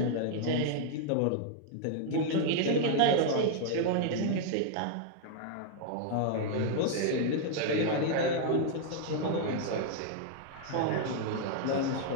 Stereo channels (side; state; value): both; different; correlation 0.00